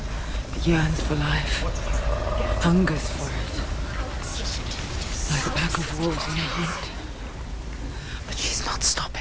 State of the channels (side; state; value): both; identical; correlation 1.00